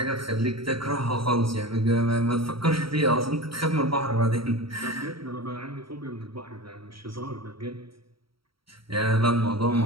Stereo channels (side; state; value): left; late; 0.75 ms